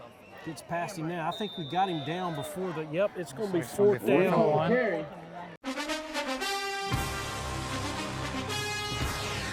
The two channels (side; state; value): both; identical; correlation 1.00